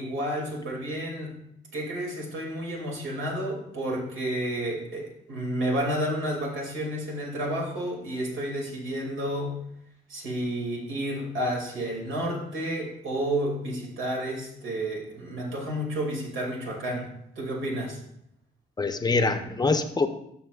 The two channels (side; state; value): both; normal; correlation 0.47